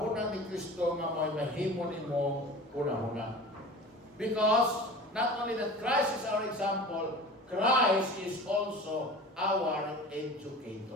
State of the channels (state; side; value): normal; both; correlation 0.38